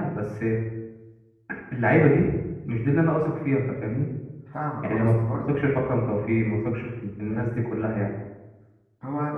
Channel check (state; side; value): identical; both; correlation 1.00